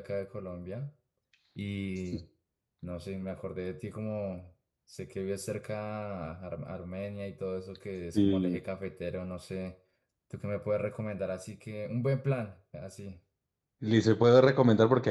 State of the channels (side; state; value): both; identical; correlation 1.00